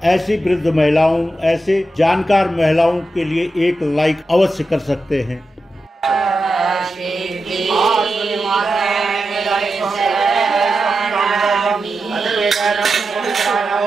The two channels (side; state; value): both; normal; correlation 0.90